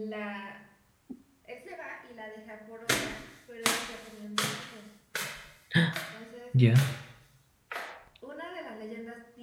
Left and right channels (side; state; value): both; identical; correlation 1.00